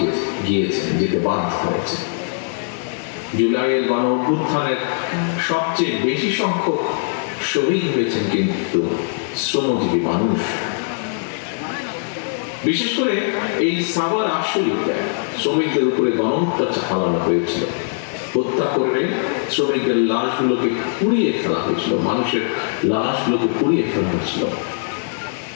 যেতে বাধ্য হয়েছে। জুলাইয়ের গণঅভ্যুত্থানের সবচেয়ে বেশি সংখ্যক শহীদ হয়েছেন কিন্তু শ্রমজীবী মানুষ। বিশেষ করে এই সাভার আশুলিয়াতে শ্রমিকদের উপরে গণহত্যা চালানো হয়েছিল। হত্যা করে শ্রমিকদের লাশগুলোকে পুড়িয়ে ফেলা হয়েছিল, মানুষের লাশগুলোকে পুড়িয়ে ফেলা হয়েছিল।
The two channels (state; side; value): silent; right; digital silence